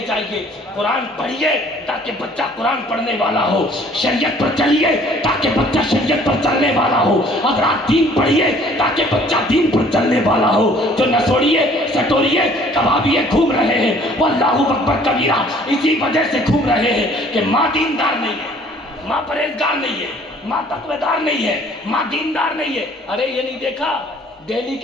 جائیے، قرآن پڑھیے تاکہ بچہ قرآن پڑھنے والا ہو، شریعت پر چلیے تاکہ بچہ شریعت پر چلنے والا ہو، حضرات دین پڑھیے تاکہ بچہ دین پر چلنے والا ہو۔ جو نسوڑیے سٹوریے کبابیے گھوم رہے ہیں وہ اللہ اکبر کبیرہ اسی وجہ سے گھوم رہے ہیں کہ ماں دیندار نہیں ہے، ماں پرہیزگار نہیں ہے، ماں تقوی دار نہیں ہے، ماں دیندار نہیں ہے۔ ارے یہ نہیں دیکھا دہلی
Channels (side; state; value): both; normal; correlation 0.55